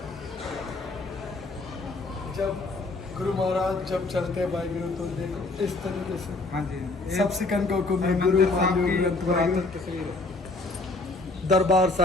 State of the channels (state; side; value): quieter; right; 3.3 dB